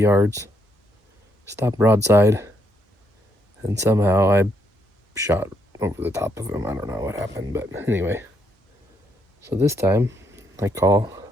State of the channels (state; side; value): normal; both; correlation 0.75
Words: stopped broadside, and somehow I shot over the top of him. I don't know what happened, but anyway. So this time, I